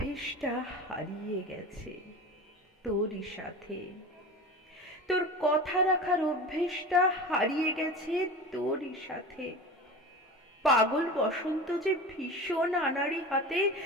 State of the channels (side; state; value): both; normal; correlation 0.31